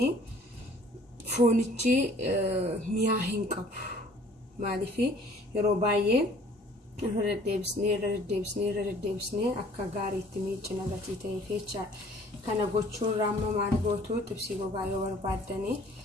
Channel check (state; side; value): normal; both; correlation 0.54